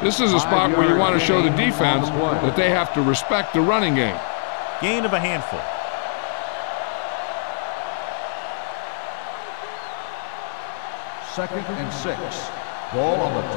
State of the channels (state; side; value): silent; right; 60 dB below the other